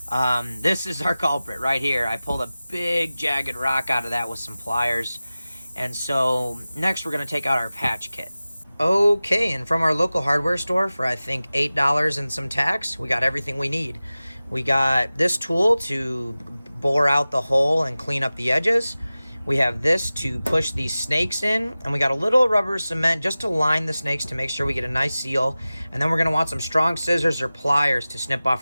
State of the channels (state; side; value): inverted; both; correlation -0.97